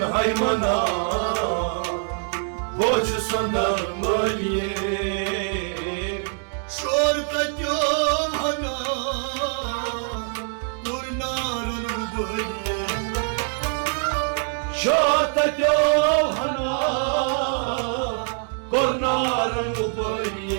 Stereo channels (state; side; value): silent; left; 56 dB below the other